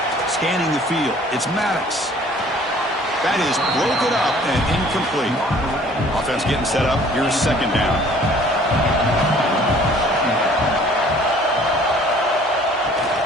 Scanning the field. It's Maddox. That is broken up and incomplete. Offense getting set up. Here's 2nd down.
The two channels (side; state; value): both; normal; correlation 0.54